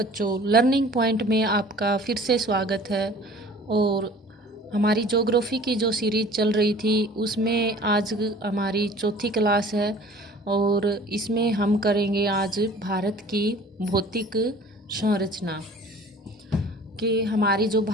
learning point में आपका फिर से स्वागत है। और हमारी ज्योग्राफी की जो सीरीज चल रही थी उसमें आज हमारी चौथी क्लास है। और इसमें हम करेंगे आज भारत की भौतिक संरचना कि हमारी जो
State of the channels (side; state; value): both; normal; correlation 0.47